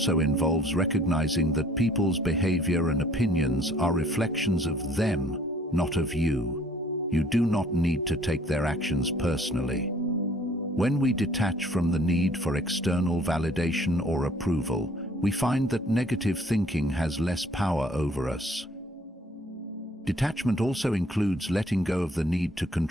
involves recognizing that people's behavior and opinions are reflections of them, not of you. You do not need to take their actions personally. When we detach from the need for external validation or approval, we find that negative thinking has less power over us. Detachment also includes letting go of the need to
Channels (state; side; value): normal; both; correlation 0.57